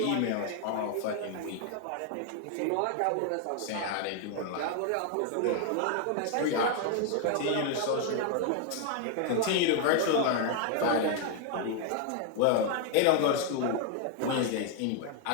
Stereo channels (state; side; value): different; both; correlation 0.01